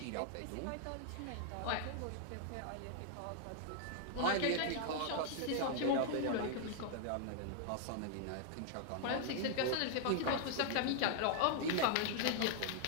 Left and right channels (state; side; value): different; both; correlation -0.01